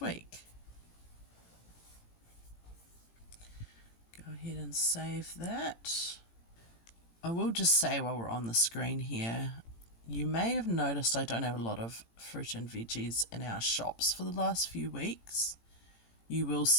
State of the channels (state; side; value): late; right; 18 ms